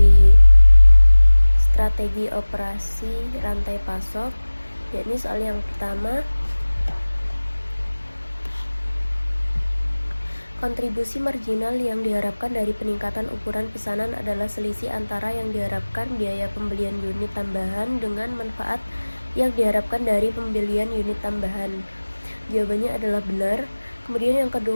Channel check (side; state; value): both; inverted; correlation -1.00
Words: strategi operasi rantai pasok, yakni soal yang pertama, kontribusi marginal yang diharapkan dari peningkatan ukuran pesanan adalah selisih antara yang diharapkan biaya pembelian unit tambahan dengan manfaat yang diharapkan dari pembelian unit tambahan. Jawabannya adalah benar. Kemudian yang